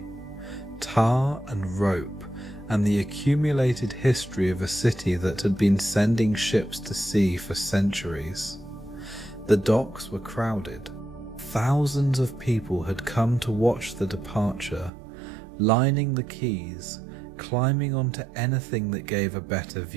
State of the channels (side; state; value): left; drops out; at 14.9 s